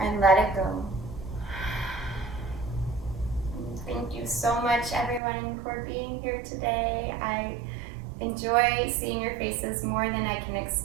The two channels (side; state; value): left; drops out; at 5.2 s